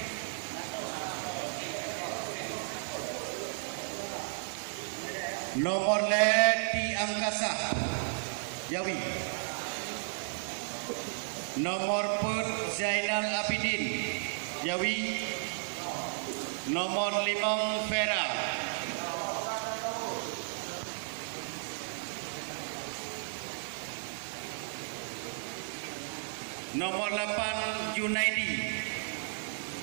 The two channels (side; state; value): left; silent; digital silence